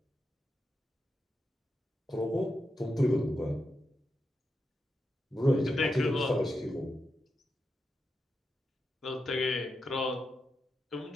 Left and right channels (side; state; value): both; normal; correlation 0.87